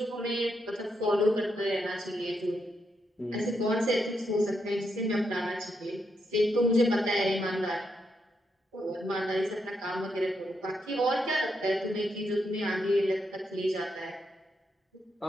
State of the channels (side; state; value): both; normal; correlation 0.81